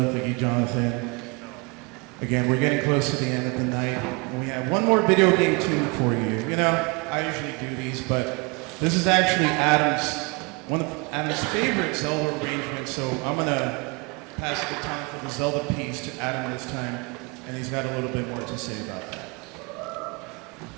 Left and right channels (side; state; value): left; quieter; 29.9 dB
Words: Thank you, Jonathan. Again, we're getting close to the end of the night, and we have one more video game tune for you. You know, I usually do these, but this is actually one of Adam's favorite Zelda arrangements, so I'm going to pass the time for the Zelda piece to Adam this time, and he's got a little bit more to say about that.